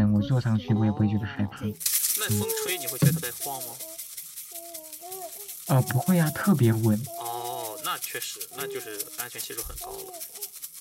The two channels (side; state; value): both; identical; correlation 1.00